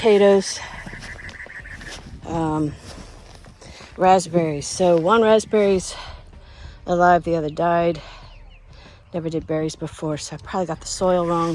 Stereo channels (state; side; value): identical; both; correlation 1.00